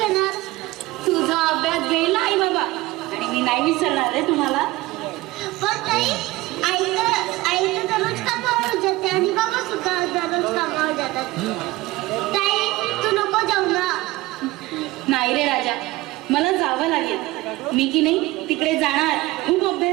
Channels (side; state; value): left; quieter; 19.5 dB